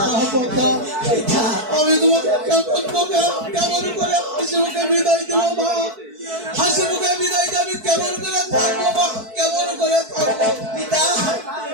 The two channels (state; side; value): late; left; 4.6 ms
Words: পিতা, আমি তোমাকে কেমন করে হাসি মুখে বিদায় দেবো মা? হাসি মুখে বিদায় দিয়ে আমি কেমন করে থাকবো মা? কেমন করে থাকবো পিতা,